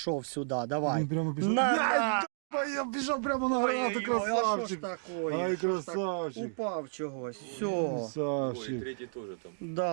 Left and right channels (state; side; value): silent; left; digital silence